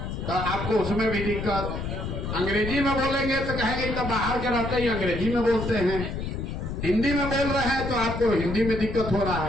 तो आपको उसमें भी दिक्कत, अंग्रेजी में बोलेंगे तो कहेंगे तो बाहर के रहते ही अंग्रेजी में बोलते हैं, हिंदी में बोल रहे हैं तो आपको हिंदी में दिक्कत हो रहा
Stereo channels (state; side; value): noise; left; rumble, 5 dB below the sound